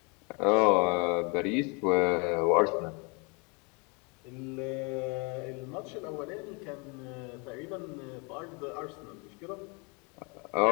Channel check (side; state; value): right; quieter; 31.6 dB